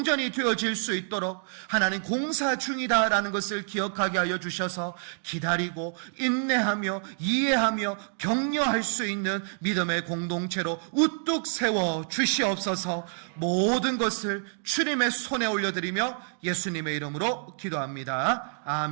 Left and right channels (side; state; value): left; silent; digital silence